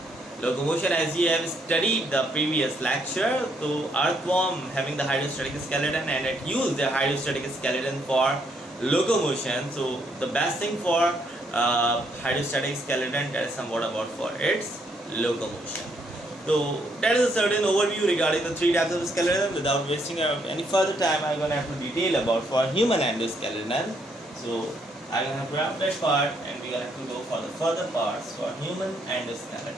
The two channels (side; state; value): both; normal; correlation 0.72